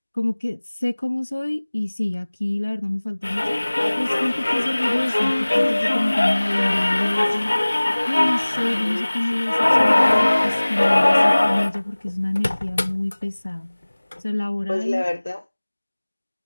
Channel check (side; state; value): both; inverted; correlation -1.00